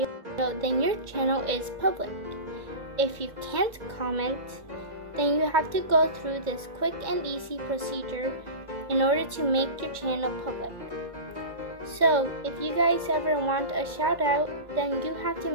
then your channel is public. If you can't comment, then you have to go through this quick and easy procedure in order to make your channel public. So if you guys ever want a shout out, then you have to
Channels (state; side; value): late; left; 2.0 ms